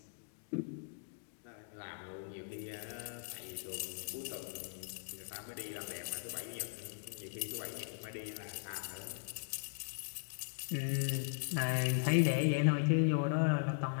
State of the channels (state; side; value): silent; right; digital silence